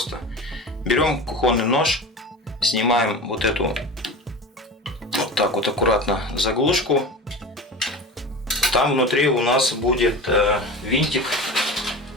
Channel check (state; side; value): normal; both; correlation 0.31